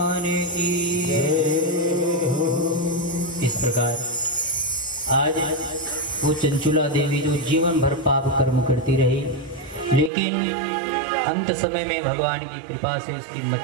की। इस प्रकार आज वो चंचुला देवी जो जीवन भर पाप कर्म करती रही, लेकिन अंत समय में भगवान की कृपा से उसकी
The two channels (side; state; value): left; drops out; at 10.1 s